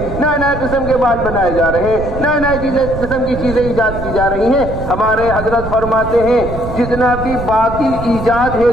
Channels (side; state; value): right; noise; rumble, 8 dB below the sound